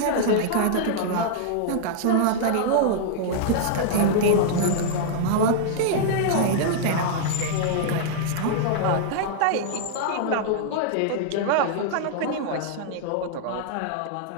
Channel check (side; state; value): both; different; correlation -0.01